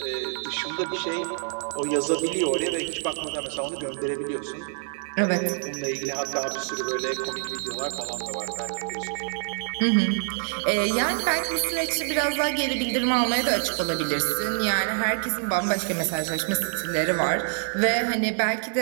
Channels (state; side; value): silent; left; digital silence